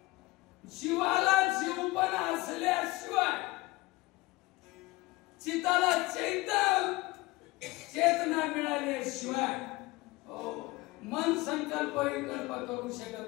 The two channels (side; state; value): right; quieter; 20.9 dB